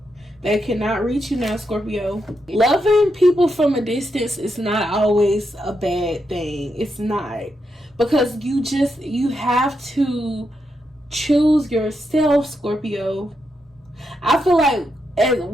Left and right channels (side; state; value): both; normal; correlation 0.83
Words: They cannot reach you now, Scorpio. Loving people from a distance is not always a bad thing. It's not. Because you have to choose yourself, Scorpio. I feel like